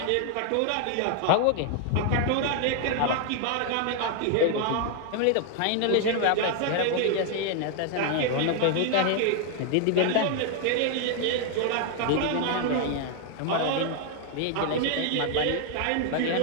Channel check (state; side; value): different; both; correlation 0.00